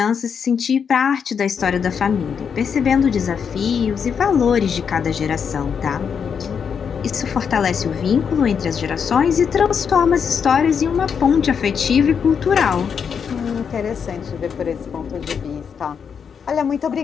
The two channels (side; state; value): right; quieter; 6.8 dB